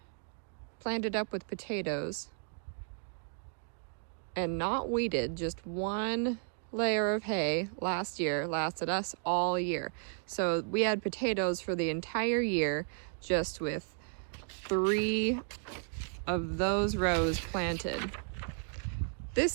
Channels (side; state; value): left; silent; 55 dB below the other